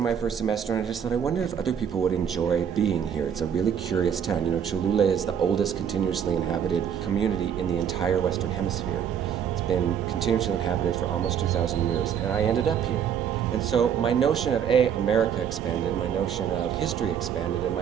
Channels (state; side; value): quieter; left; 8.3 dB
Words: my first semester, and I just thought, I wonder if other people would enjoy being here. It's a really curious town. You know, Cholula is the oldest continuously inhabited community in the entire Western Hemisphere. It's been continuously inhabited for almost 2,000 years, and I ended up here. And so my notion of America expanded, my notion of history expanded, and